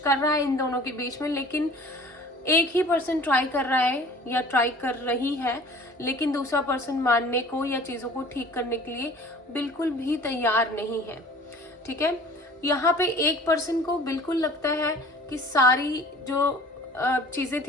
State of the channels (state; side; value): normal; both; correlation 0.47